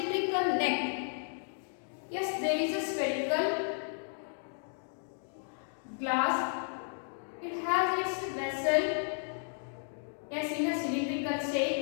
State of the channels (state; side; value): silent; right; 55 dB below the other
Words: neck. Yes, there is a spherical glass. It has its vessel, yes, in a cylindrical